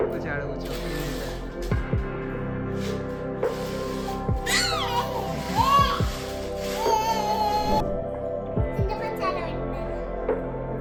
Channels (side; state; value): both; identical; correlation 1.00